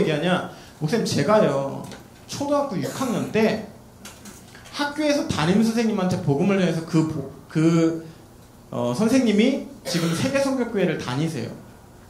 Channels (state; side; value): identical; both; correlation 1.00